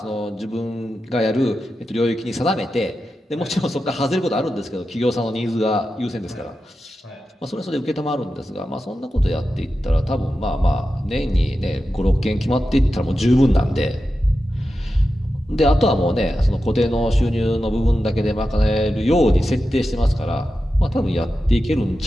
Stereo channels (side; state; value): both; normal; correlation 0.91